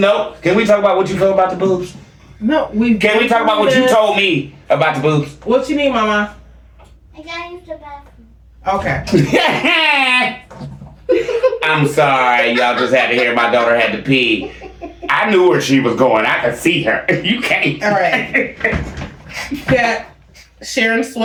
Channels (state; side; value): identical; both; correlation 1.00